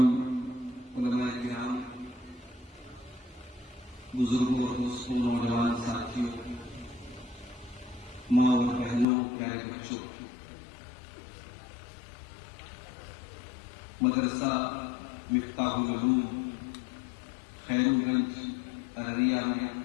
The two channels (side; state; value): right; drops out; at 9.1 s